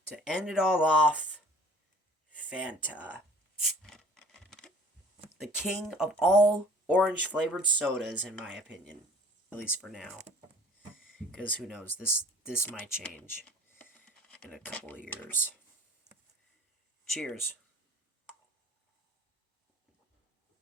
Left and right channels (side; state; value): both; normal; correlation 0.50